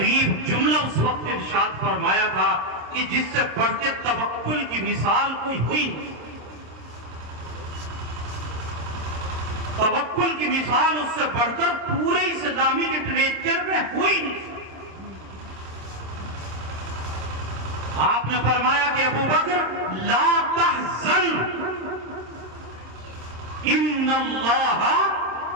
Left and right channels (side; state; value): left; late; 26 ms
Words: جملہ اس وقت ارشاد فرمایا تھا کہ جس سے بڑھ کے توکل کی مثال کوئی ہوئی نہیں۔ توکل کی مثال اس سے بڑھ کر پورے اسلامی لٹریچر میں ہوئی نہیں۔ آپ نے فرمایا کہ ابو بکر لا تحزن ان اللہ